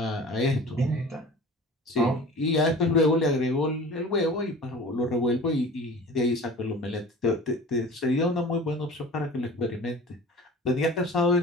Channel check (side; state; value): both; normal; correlation 0.39